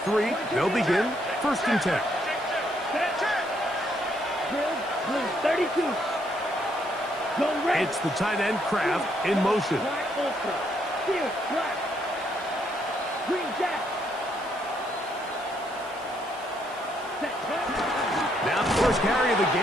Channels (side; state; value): right; noise; hiss, 21 dB below the sound